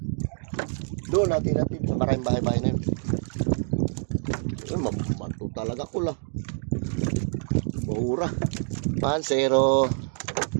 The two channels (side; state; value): left; silent; 58 dB below the other